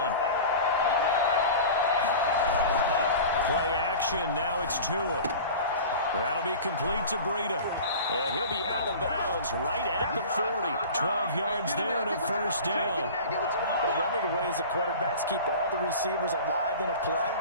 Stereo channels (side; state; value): both; inverted; correlation -0.37